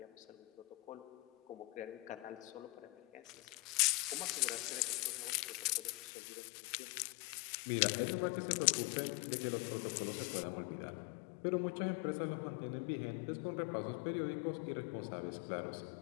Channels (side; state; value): right; drops out; at 6.0 s